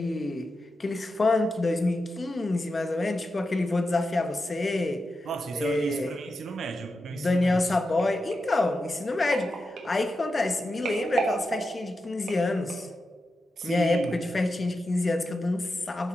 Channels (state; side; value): normal; both; correlation 0.89